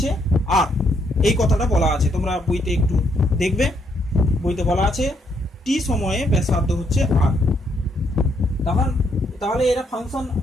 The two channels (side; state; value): both; normal; correlation 0.73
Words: আর, এই কথাটা বলা আছে, তোমরা বইতে একটু দেখবে, বইতে বলা আছে টি সময়ে ব্যাসার্ধ হচ্ছে আর। তাহলে এরা ফাংশন